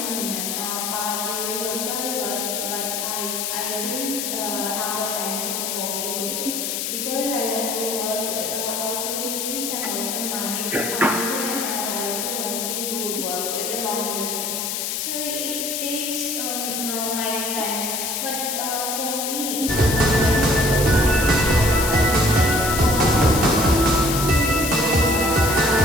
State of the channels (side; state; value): left; noise; hiss, 2 dB below the sound